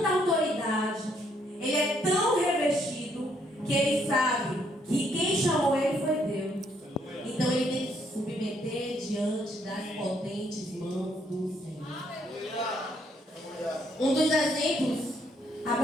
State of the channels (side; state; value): both; normal; correlation 0.71